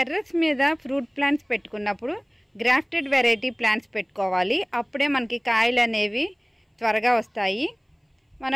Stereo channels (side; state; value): both; identical; correlation 1.00